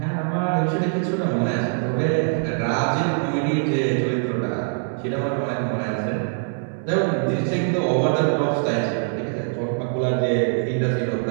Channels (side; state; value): left; silent; digital silence